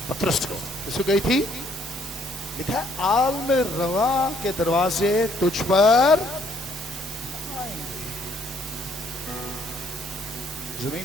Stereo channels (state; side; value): normal; both; correlation 0.66